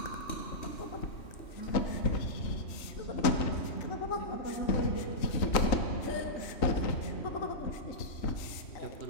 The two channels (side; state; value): right; late; 3.8 ms